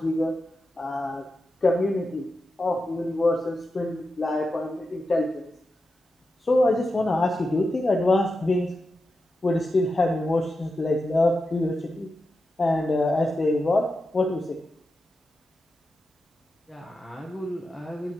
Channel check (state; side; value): normal; both; correlation 0.90